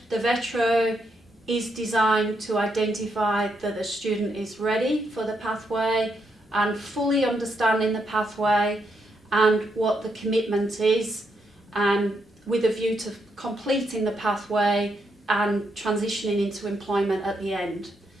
VETRO is designed to identify that the student is ready for the pathway and fully understanding the pathway and what the commitment is, with a view to completing the pathway and transitioning into employment at the end.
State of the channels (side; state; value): both; normal; correlation 0.79